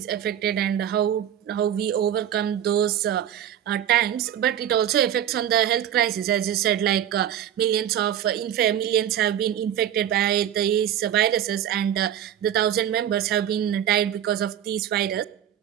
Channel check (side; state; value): left; quieter; 10.4 dB